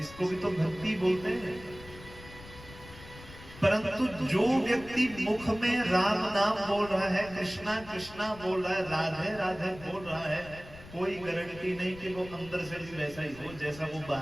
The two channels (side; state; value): left; noise; rumble, 17 dB below the sound